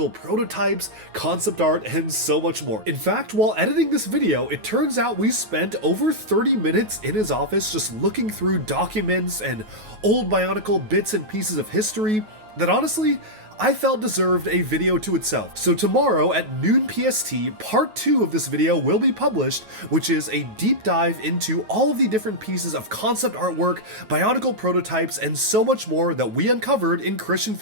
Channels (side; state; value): left; late; 9.3 ms